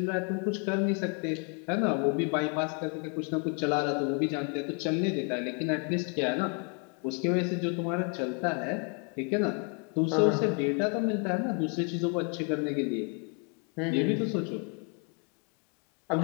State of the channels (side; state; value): right; quieter; 37.0 dB